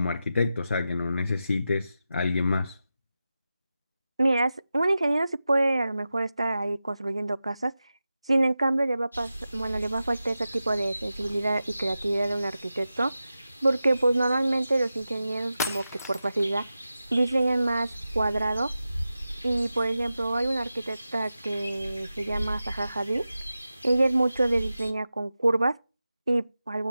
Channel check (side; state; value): both; inverted; correlation -0.92